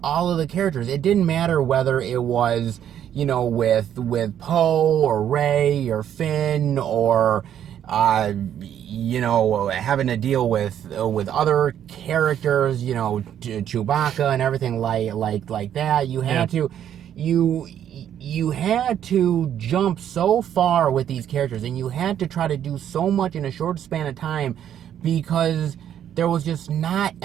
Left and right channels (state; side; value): quieter; left; 10.0 dB